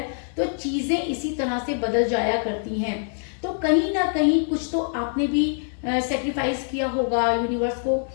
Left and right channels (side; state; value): right; silent; 62 dB below the other